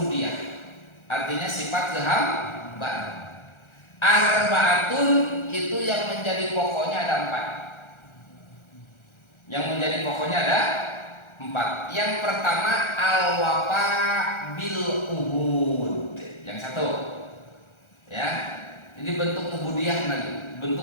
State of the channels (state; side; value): late; right; 1.4 ms